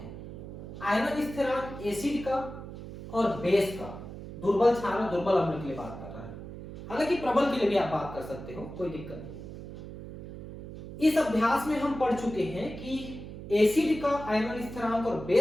आयनन स्थिरांक एसिड का और बेस का, दुर्बल क्षार और दुर्बल अम्ल के लिए बात कर रहा है, हालांकि प्रबल के लिए भी आप बात कर सकते हो, कोई दिक्कत नहीं। इस अभ्यास में हम पढ़ चुके हैं कि एसिड का आयनन स्थिरांक और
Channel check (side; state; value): right; noise; hum, 11 dB below the sound